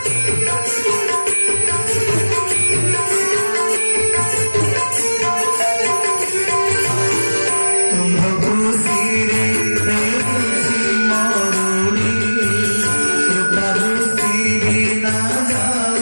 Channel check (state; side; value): inverted; both; correlation -1.00